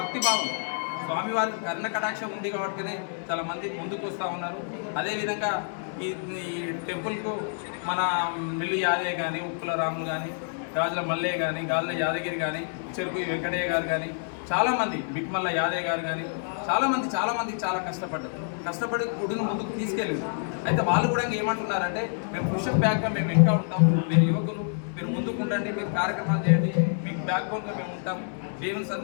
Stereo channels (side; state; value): right; silent; 60 dB below the other